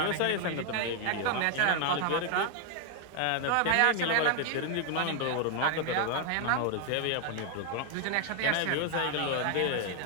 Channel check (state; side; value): different; both; correlation 0.00